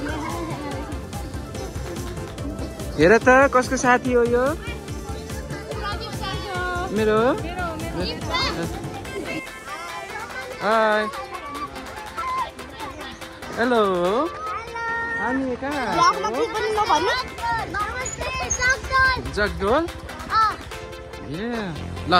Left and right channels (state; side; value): identical; both; correlation 1.00